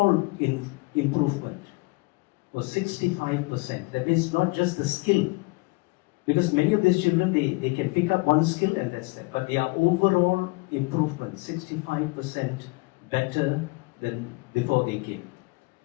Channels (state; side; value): quieter; right; 26.5 dB